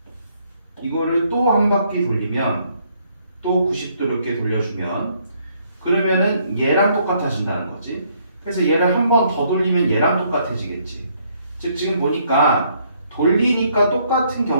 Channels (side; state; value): both; inverted; correlation -0.68